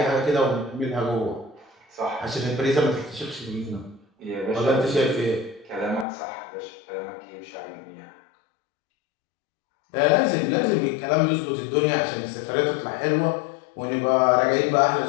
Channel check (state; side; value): drops out; right; at 6.1 s